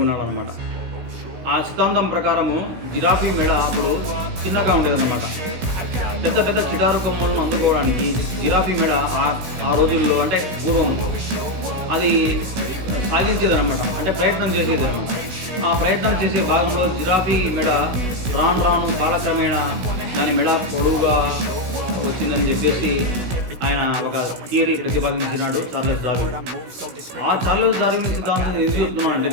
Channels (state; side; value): late; left; 16 ms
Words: అనమాట. ఆ సిద్ధాంతం ప్రకారము జిరాఫీ మెడ అప్పుడు చిన్నగా ఉండేదన్నమాట. పెద్ద పెద్ద చిటారు కొమ్మలను అందుకోవడానికి జిరాఫీ మెడ ఆ రోజుల్లో అంటే పూర్వం అది సాధించేదనమాట, అంటే ప్రయత్నం చేసేదనమాట. ఆ ప్రయత్నం చేసే భాగంలో జిరాఫీ మెడ రాను రాను కాలక్రమేణా దాని మెడ పొడవుగా వచ్చిందని చెప్పేసి ఆయన ఒక థియరీ ప్రతిపాదించినాడు చార్లెస్ డార్విన్. ఆ చార్లెస్ డార్విన్ సిద్ధాంతం ఎందుకు